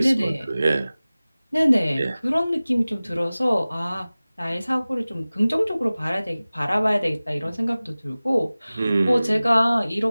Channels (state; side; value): inverted; both; correlation -0.98